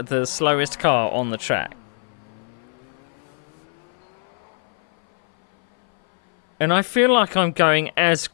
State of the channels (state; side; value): silent; right; 59 dB below the other